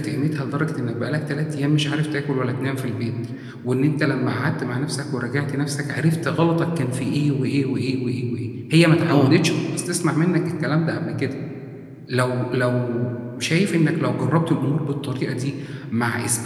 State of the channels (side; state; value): both; identical; correlation 1.00